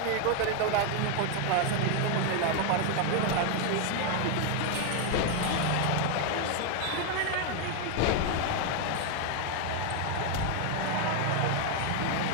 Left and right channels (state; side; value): different; both; correlation 0.01